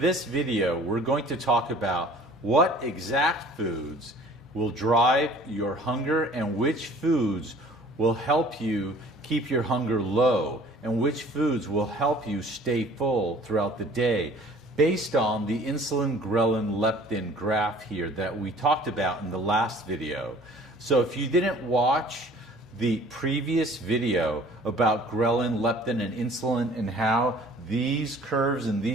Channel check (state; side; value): normal; both; correlation 0.51